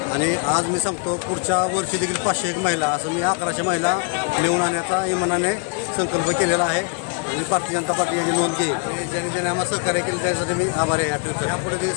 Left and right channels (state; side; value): quieter; right; 36.9 dB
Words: आणि आज मी सांगतो पुढच्या वर्षी देखील 501 महिला, असं मी 1100 महिला नेऊन आणण्याचा इमानाने संकल्प केलेला आहे. आणि भारतीय जनता पार्टी याची नोंद घेईल. ज्यांनी आम्हाला सहकार्य केलं त्यासाठी मी आभारी आहे. यापुढे ते